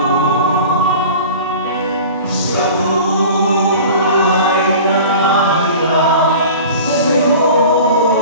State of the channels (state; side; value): inverted; both; correlation -0.39